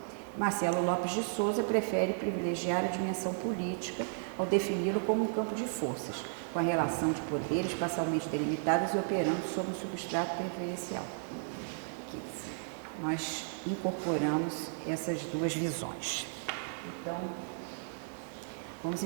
Marcelo Lopes de Souza prefere privilegiar a dimensão política ao defini-lo como um campo de forças, com a relação de poderes parcialmente delimitadas e operando sob um substrato preferencial. Aqui, nós incorporamos essas duas visões. Então, vamos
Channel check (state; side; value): silent; left; 55 dB below the other